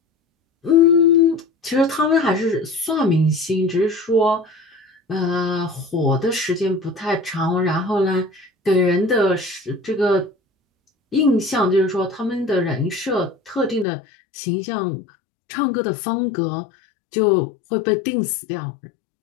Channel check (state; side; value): drops out; right; at 13.9 s